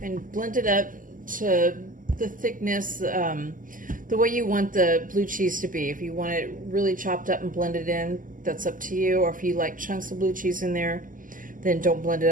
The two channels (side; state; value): left; late; 0.39 ms